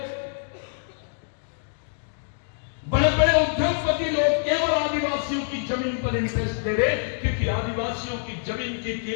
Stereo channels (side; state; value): right; silent; digital silence